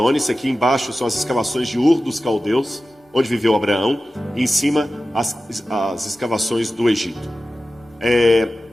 Isso aqui embaixo são as escavações de Ur dos Caldeus, onde viveu Abraão. E em cima as escavações do Egito.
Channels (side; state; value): both; normal; correlation 0.94